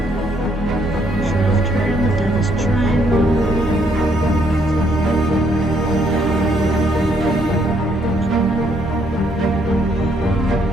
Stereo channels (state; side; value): normal; both; correlation 0.71